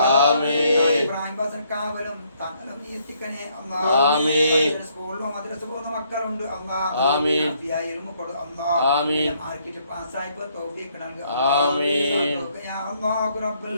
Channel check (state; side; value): inverted; both; correlation -0.69